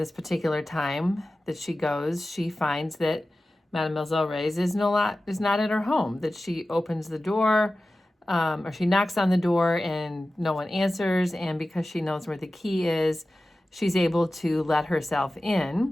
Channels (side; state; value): both; normal; correlation 0.95